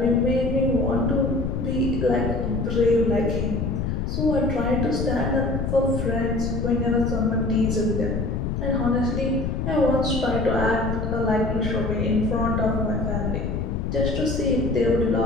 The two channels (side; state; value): left; noise; rumble, 1 dB below the sound